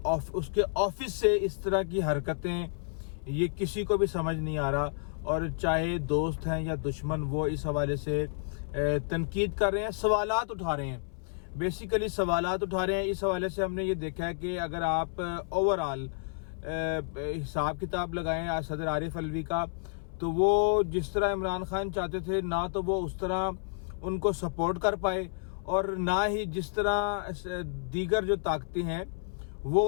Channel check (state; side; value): silent; right; 57 dB below the other